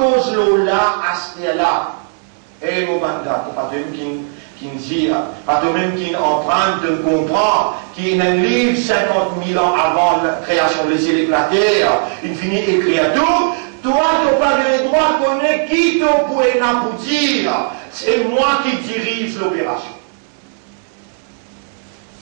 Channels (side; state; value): left; silent; digital silence